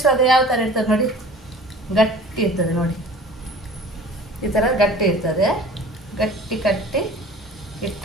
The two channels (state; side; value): normal; both; correlation 0.44